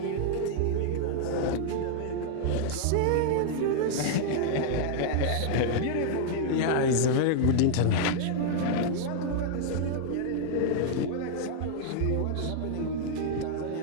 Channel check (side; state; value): both; different; correlation -0.01